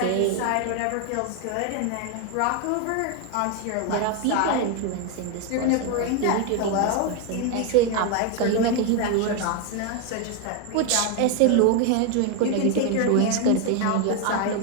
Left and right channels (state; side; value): different; both; correlation 0.01